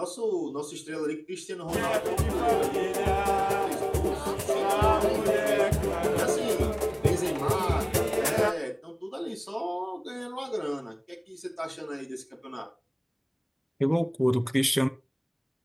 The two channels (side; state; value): both; identical; correlation 1.00